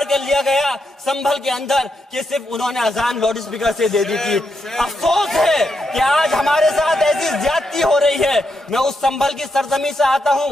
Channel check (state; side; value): normal; both; correlation 0.82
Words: कर लिया गया संभल के अंदर कि सिर्फ उन्होंने अजान लाउड स्पीकर से दे दी थी। अफसोस है कि आज हमारे साथ ऐसी ज्यादती हो रही है। मैं उस संभल की सरजमी से आता